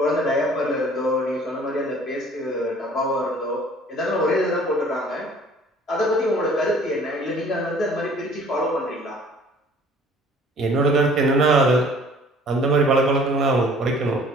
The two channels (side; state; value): both; normal; correlation 0.53